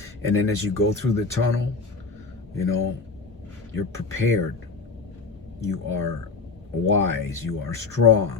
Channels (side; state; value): right; quieter; 4.3 dB